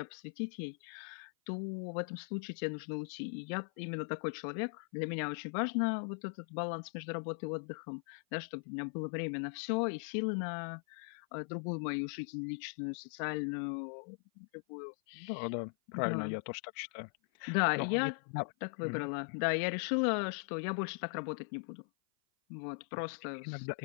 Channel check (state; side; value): silent; right; 52 dB below the other